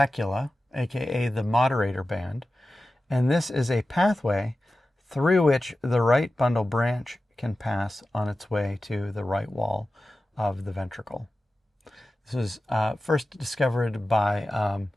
aka the moderator band, and this is a pathway through which the right bundle branch can pass on its way to the right wall of the ventricle. This was first discovered by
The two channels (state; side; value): normal; both; correlation 0.94